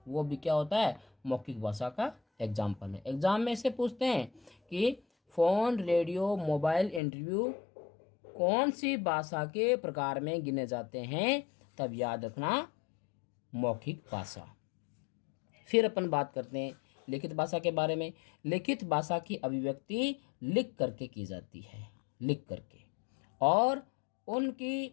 वो भी क्या होता है? मौखिक भाषा का एग्जाम्पल है। एग्जाम में से पूछते हैं कि फ़ोन, रेडियो, मोबाइल, इंटरव्यू कौन सी भाषा के प्रकार में गिने जाते हैं? तब याद रखना मौखिक भाषा। फिर अपन बात करते हैं लिखित भाषा के बारे में। लिखित भाषा की अभिव्यक्ति लिख करके की जाती है, लिख करके, और उनकी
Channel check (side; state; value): right; drops out; at 7.0 s